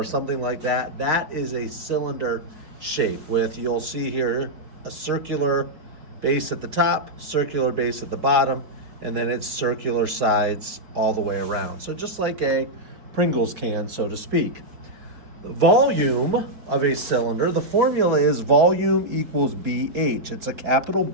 something like that, that is a cylinder shape with, you'll see here, a circular base at the top, circular base at the bottom, and then it's circular sides all the way around. So just like a Pringles can, so to speak. Volume of a cylinder, the formula is volume equals BH. It's a capital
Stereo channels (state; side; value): late; left; 4.6 ms